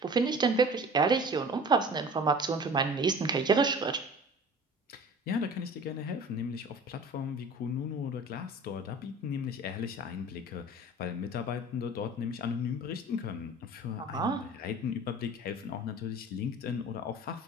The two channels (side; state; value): both; normal; correlation 0.42